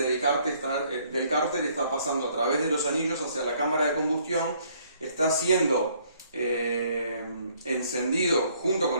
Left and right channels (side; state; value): both; inverted; correlation -0.65